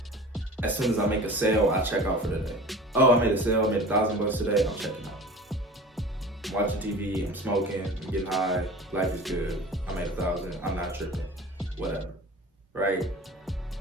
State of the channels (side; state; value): both; normal; correlation 0.39